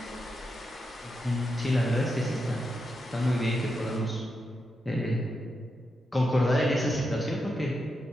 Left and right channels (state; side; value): normal; both; correlation 0.85